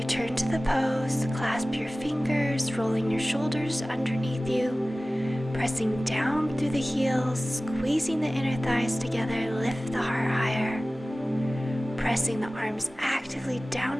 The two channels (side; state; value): both; normal; correlation 0.97